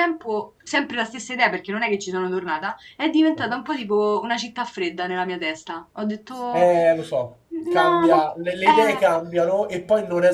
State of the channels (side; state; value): both; identical; correlation 1.00